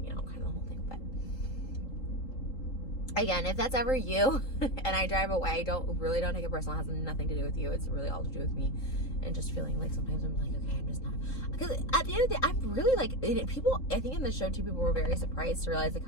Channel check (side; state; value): right; late; 3.8 ms